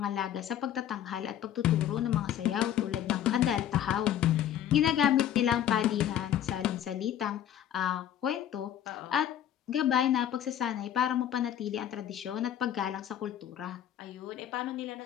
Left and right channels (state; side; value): quieter; right; 10.6 dB